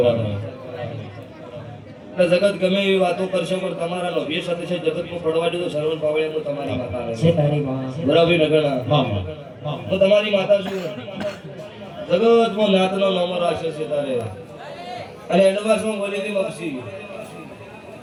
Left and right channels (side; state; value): both; identical; correlation 1.00